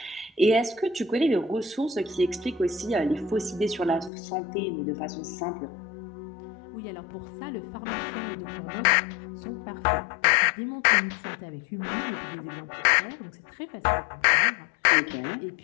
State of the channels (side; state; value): right; drops out; at 4.1 s